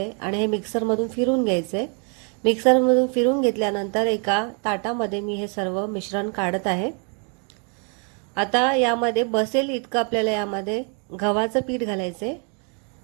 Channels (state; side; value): quieter; left; 38.6 dB